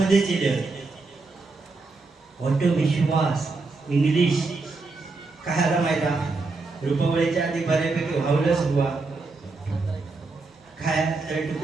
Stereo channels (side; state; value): left; quieter; 3.8 dB